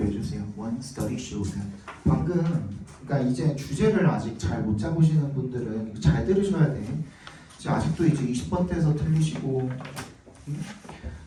주세요. one study showed that. 방금 그러니까 이제 주제를 아직 잘 못 잡으시는 분들은 이거 잘 들으셔야 돼. 이제 아직도 이제 20번대에서 틀리시고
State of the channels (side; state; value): both; identical; correlation 1.00